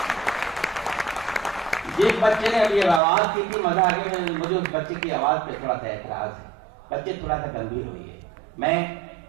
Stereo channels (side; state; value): left; drops out; at 3.0 s